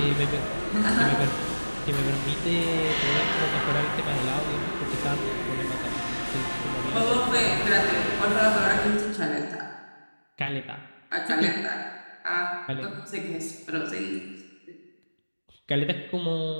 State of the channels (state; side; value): inverted; both; correlation -1.00